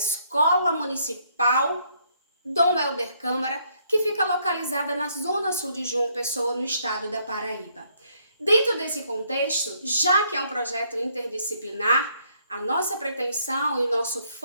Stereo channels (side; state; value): both; inverted; correlation -0.70